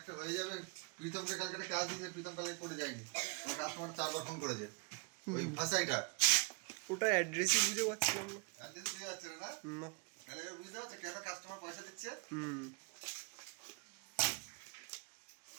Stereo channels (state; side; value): quieter; left; 34.6 dB